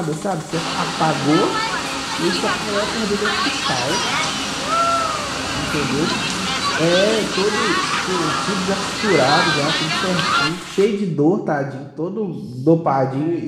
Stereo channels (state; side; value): identical; both; correlation 1.00